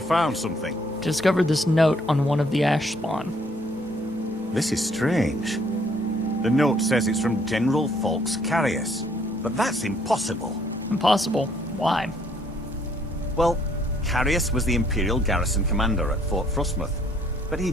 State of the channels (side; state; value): both; normal; correlation 0.65